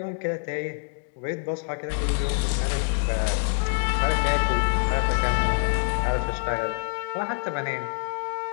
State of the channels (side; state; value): right; silent; digital silence